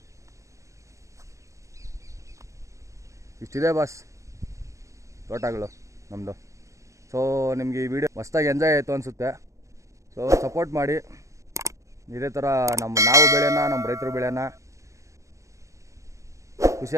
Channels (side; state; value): left; late; 0.15 ms